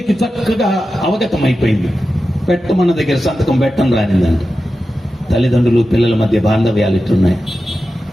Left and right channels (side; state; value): both; normal; correlation 0.92